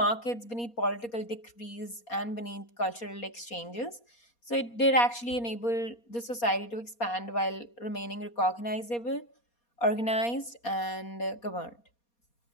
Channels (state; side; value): late; right; 4.2 ms